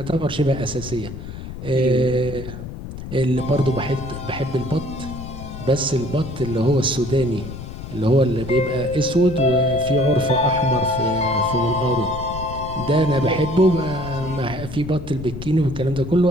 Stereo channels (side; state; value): left; noise; rumble, 10 dB below the sound